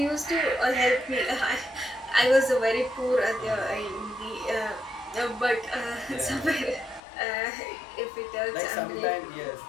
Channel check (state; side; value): drops out; right; at 7.0 s